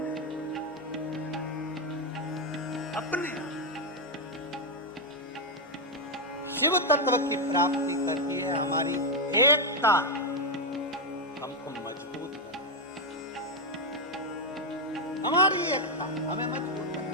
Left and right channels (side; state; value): both; normal; correlation 0.03